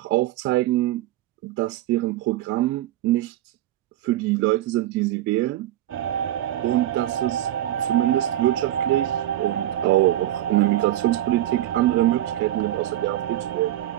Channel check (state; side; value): quieter; left; 13.7 dB